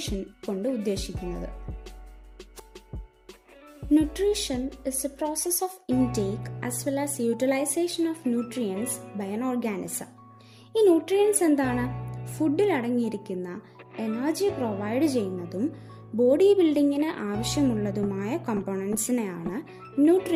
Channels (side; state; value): both; identical; correlation 1.00